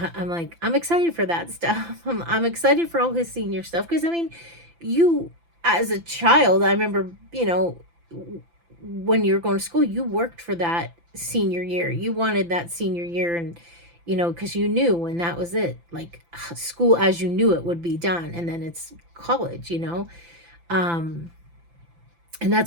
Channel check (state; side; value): late; left; 5.9 ms